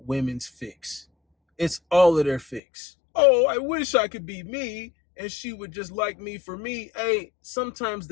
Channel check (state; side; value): drops out; right; at 2.6 s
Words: fix. It's all of their fix. Oh, I wish I could be me and she would just like me for me. Hey, sometimes